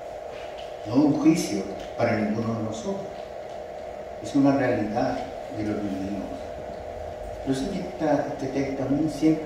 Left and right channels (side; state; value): both; identical; correlation 1.00